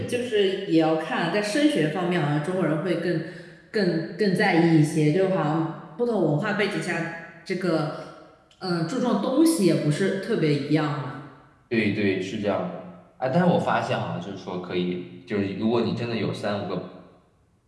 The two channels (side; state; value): both; identical; correlation 1.00